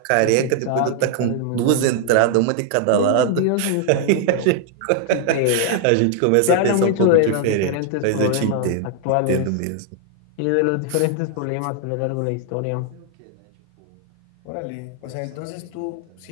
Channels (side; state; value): both; different; correlation 0.00